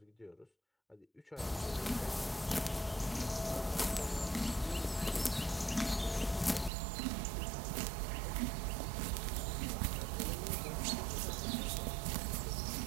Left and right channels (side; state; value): left; drops out; at 6.7 s